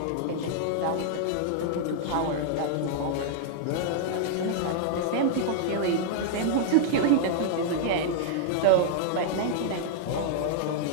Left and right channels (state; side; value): different; both; correlation -0.01